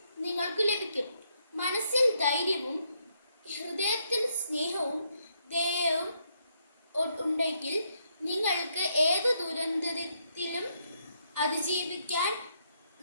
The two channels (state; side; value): inverted; both; correlation -0.75